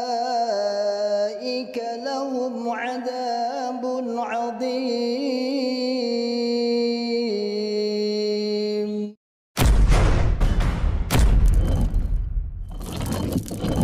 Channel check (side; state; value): both; identical; correlation 1.00